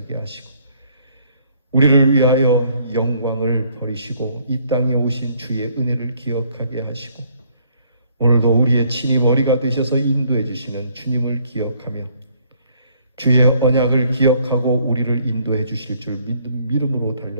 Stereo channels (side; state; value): both; inverted; correlation -0.64